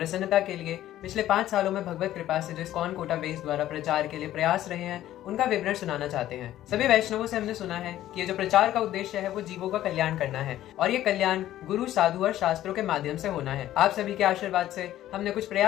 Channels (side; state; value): right; quieter; 13.3 dB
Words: के लिए पिछले 5 सालों में भगवत कृपा से जो इस्कॉन कोटा बेस द्वारा प्रचार के लिए प्रयास रहे हैं उनका विवरण सुनाना चाहते हैं। सभी वैष्णवों से हमने सुना है कि ये जो प्रचार का उद्देश्य है वो जीवों का कल्याण करना है और ये कल्याण गुरु, साधु और शास्त्रों के माध्यम से होना है। आप सभी के आशीर्वाद से हमने कुछ